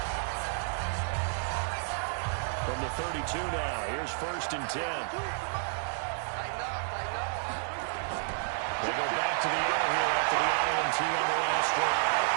From the 32 now, here's 1st and 10. They go back to the air here after the INT on the last drive.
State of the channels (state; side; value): silent; left; digital silence